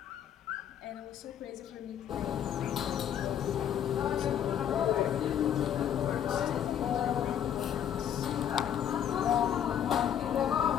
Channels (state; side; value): quieter; right; 9.6 dB